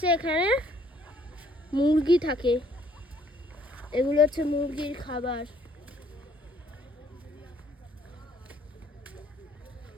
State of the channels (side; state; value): both; normal; correlation 0.63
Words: এখানে মুরগি থাকে, এগুলো হচ্ছে মুরগির খাবার।